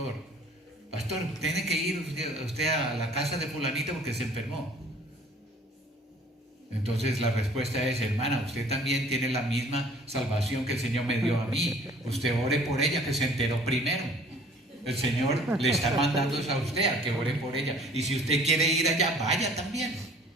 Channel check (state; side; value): normal; both; correlation 0.53